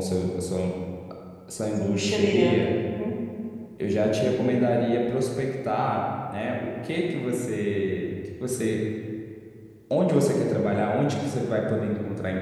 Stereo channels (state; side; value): identical; both; correlation 1.00